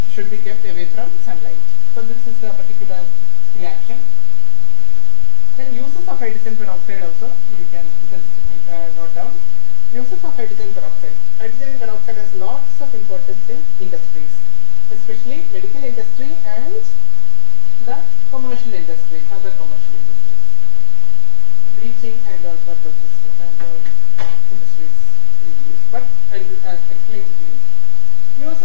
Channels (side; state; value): both; different; correlation 0.00